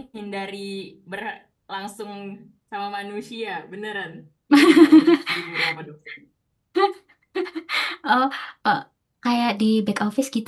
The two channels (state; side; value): identical; both; correlation 1.00